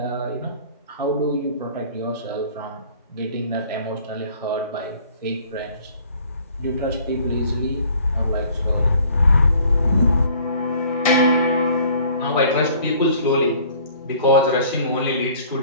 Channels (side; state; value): both; inverted; correlation -0.54